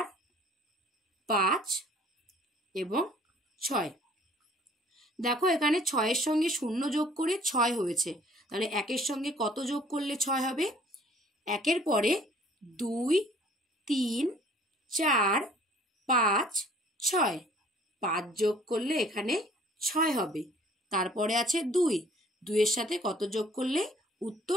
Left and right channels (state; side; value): normal; both; correlation 0.56